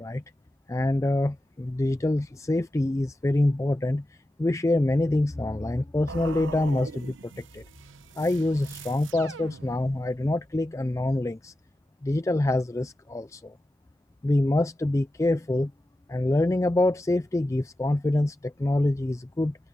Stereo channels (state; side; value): normal; both; correlation 0.91